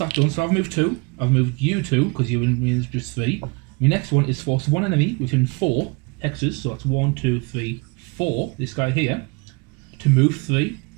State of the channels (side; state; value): left; quieter; 29.0 dB